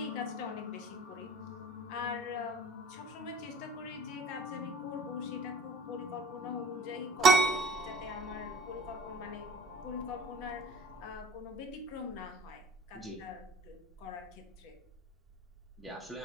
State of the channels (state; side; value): normal; both; correlation 0.47